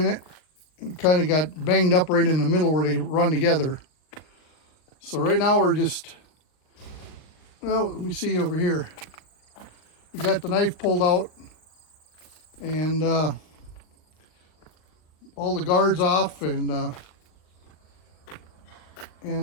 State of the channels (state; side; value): late; right; 39 ms